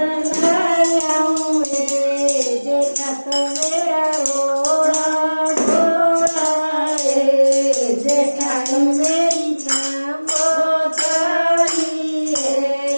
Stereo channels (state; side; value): inverted; both; correlation -1.00